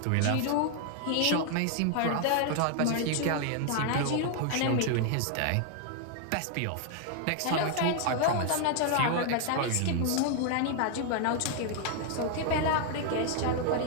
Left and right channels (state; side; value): different; both; correlation 0.00